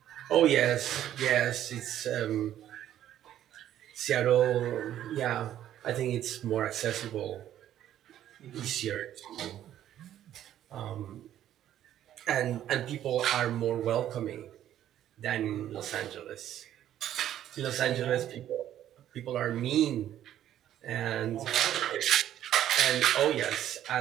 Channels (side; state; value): left; quieter; 11.6 dB